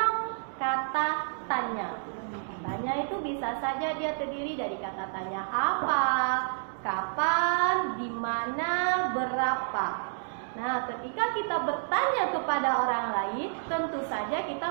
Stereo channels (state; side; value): silent; left; digital silence